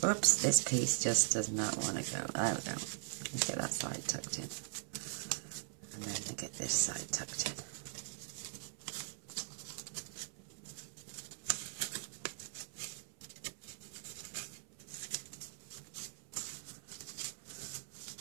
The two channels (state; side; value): silent; left; 51 dB below the other